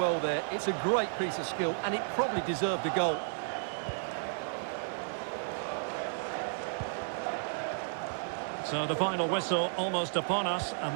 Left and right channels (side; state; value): left; silent; digital silence